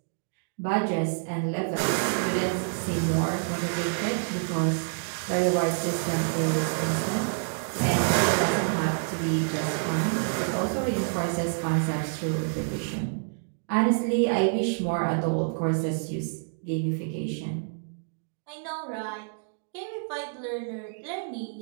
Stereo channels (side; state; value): left; silent; digital silence